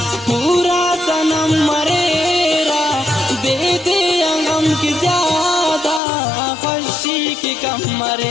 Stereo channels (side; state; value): right; drops out; at 6.0 s